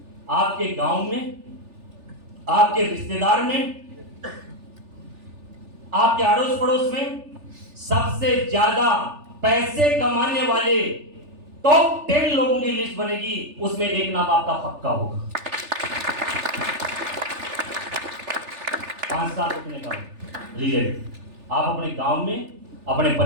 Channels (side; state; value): left; late; 3.4 ms